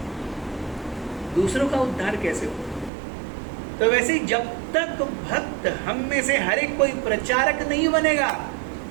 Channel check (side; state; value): left; drops out; at 2.9 s